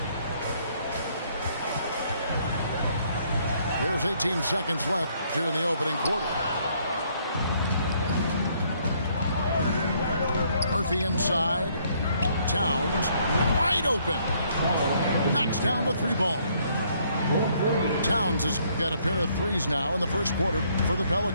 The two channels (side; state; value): both; inverted; correlation -0.67